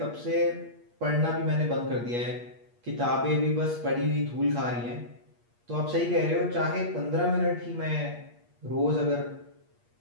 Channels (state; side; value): late; left; 8.5 ms